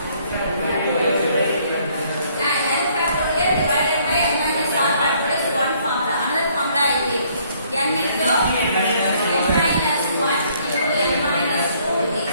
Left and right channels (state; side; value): inverted; both; correlation -0.64